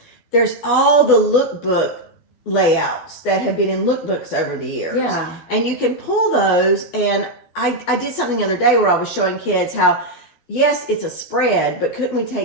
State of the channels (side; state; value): right; late; 12 ms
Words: there's all the lookbook layouts that have been in lookbooks over the years. Yeah. And you can pull those. And I did something the other day where I was showing kids how, yes, it's a spread, but couldn't we